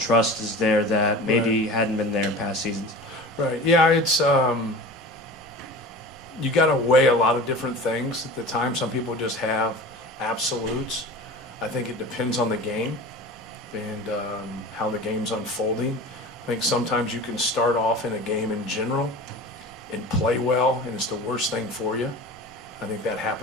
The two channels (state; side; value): normal; both; correlation 0.35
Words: is there that maybe Right. hadn't been there in past seasons? Right. Yeah, it's you got to weigh a lot of different things at the time. Some people just have absolutes. I think it depends on the game and how the game's unfolding. I think sometimes you can start off in a game in general and play well, and it's the worst thing for you. I think that